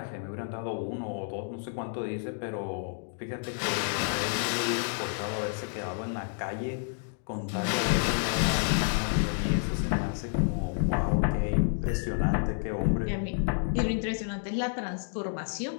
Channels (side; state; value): right; silent; 58 dB below the other